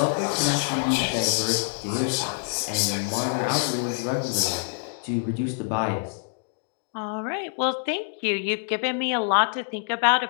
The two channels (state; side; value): silent; right; digital silence